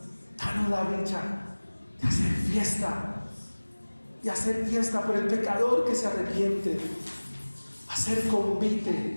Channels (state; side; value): inverted; both; correlation -1.00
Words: Danos la dicha de hacer fiesta. Y hacer fiesta por el pecador que se arrepiente, hacer